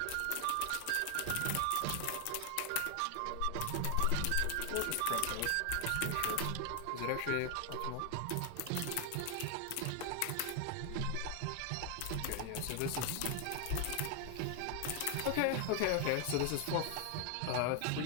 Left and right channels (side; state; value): both; different; correlation 0.00